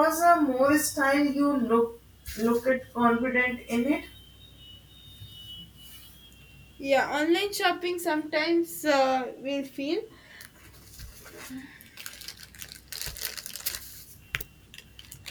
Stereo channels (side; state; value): both; identical; correlation 1.00